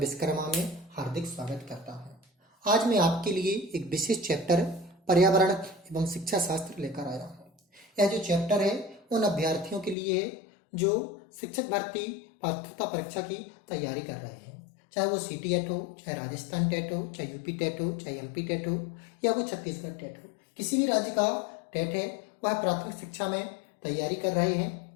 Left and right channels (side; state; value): right; drops out; at 10.0 s